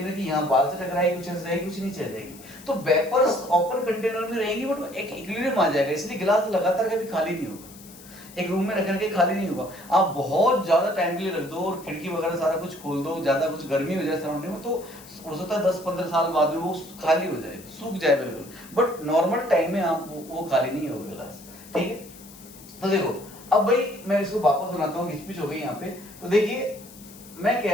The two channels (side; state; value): left; noise; hiss, 20 dB below the sound